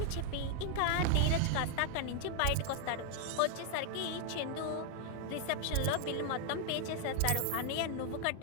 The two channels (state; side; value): different; both; correlation 0.00